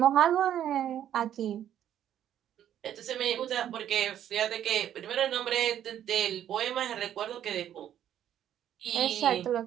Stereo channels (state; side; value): quieter; left; 10.7 dB